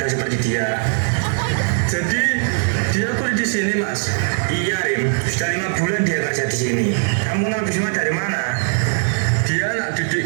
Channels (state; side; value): silent; left; digital silence